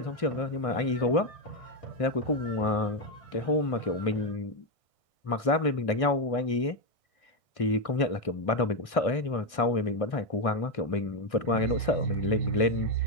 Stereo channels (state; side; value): late; right; 1.6 ms